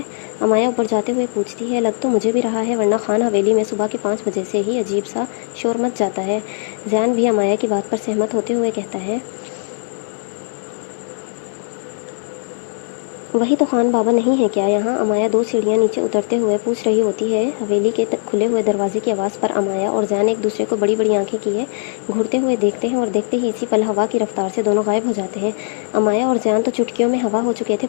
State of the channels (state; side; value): silent; right; digital silence